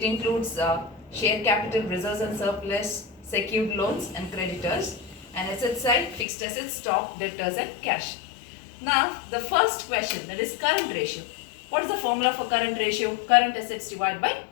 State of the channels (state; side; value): drops out; right; at 6.2 s